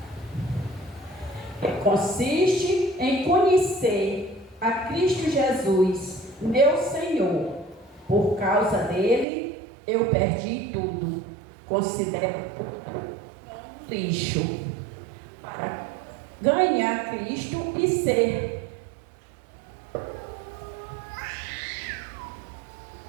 consiste em conhecer a Cristo Jesus, meu Senhor. Por causa dele, eu perdi tudo. Considero lixo para ganhar Cristo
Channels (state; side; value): drops out; left; at 9.2 s